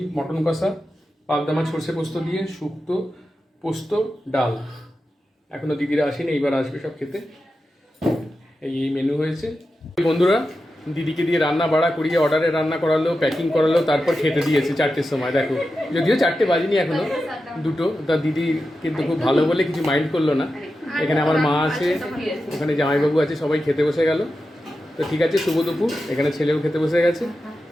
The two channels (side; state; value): both; normal; correlation 0.91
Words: মটন কষা, পাবদা মাছ সর্ষে পোস্ত দিয়ে, শুক্তো, পোস্ত, ডাল। এখনো দিদিরা আসেনি, এইবার আসবে সব খেতে। এই মেনু হয়েছে। বন্ধুরা, দিদিকে দিয়ে রান্না বাড়া করিয়ে অর্ডারে রান্না করালো, প্যাকিং করালো, তারপর খেতে দিয়েছে 4টের সময়। দেখো, যদিও 4টে বাজেনি এখনো, 2টো। তা দিদি কিন্তু খুব ভালো বলে কিছু মাইন্ড করলো না। এখানে আমার মা আছে, ওখানে জামাইবাবু আছে, সবাই খেতে বসে গেল। তো ঠিক আছে, শুভ দুপুর। এখানে ছেলেও খেতে বসে গেছে।